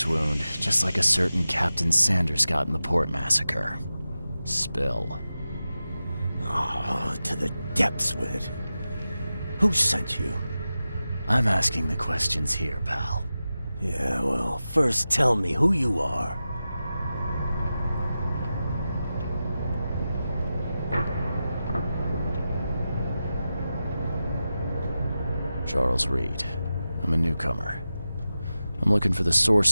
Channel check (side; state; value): both; inverted; correlation -0.93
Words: wound, just like a certain Captain Sanders got in the port massacre. Spill. Oh, to the depths with it. Who sent you? I'm asking the questions here, pal. Yeah, well, first tell me who you are. Charles Reed. I'm a newcomer. I'm looking for the